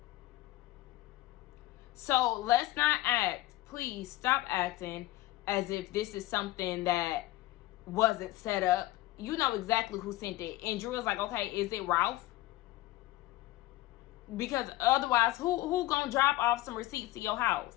So let's not act, please stop acting as if this is something that wasn't set up. You know exactly who sent it. And Drew was like, okay, is it Ralph? Because otherwise, who gonna drop off some receipts to your house?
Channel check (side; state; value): right; quieter; 17.3 dB